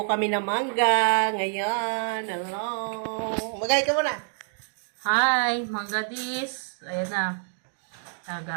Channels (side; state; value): left; silent; digital silence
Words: kami ng mangga ngayon. Hello. Magay ka muna. Hi, Mangga Dis. Ayan na.